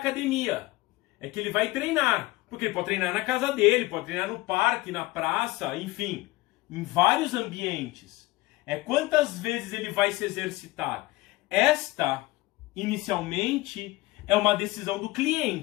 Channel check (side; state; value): right; quieter; 20.1 dB